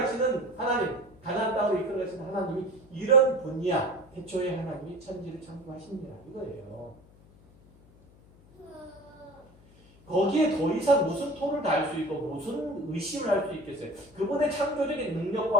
하나님, 가나안 땅으로 이끌어 가시는 하나님이 이런 분이야. 태초에 하나님이 천지를 창조하십니다. 이거예요. 거기에 더 이상 무슨 토를 달 수 있고 무슨 의심을 할 수 있겠어요? 그분의 창조적인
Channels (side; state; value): left; noise; hum, 25 dB below the sound